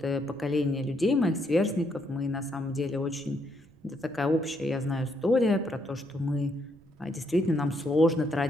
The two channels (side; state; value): right; noise; rumble, 28 dB below the sound